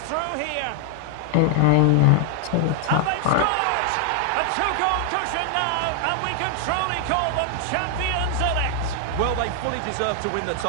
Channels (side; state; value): both; different; correlation 0.00